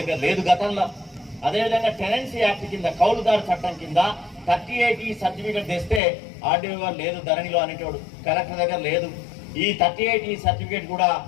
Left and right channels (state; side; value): drops out; right; at 6.0 s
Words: లేదు గతంలో. అదేవిధంగా టెనెన్సీ యాక్ట్ కింద కౌలుదారు చట్టం కింద 38E సర్టిఫికేట్ తెస్తే ఆర్డీఓ గారు లేదు ధరణిలో అనేటోడు, కలెక్టర్ దగ్గర లేదు. ఈ 38E సర్టిఫికేట్ కూడా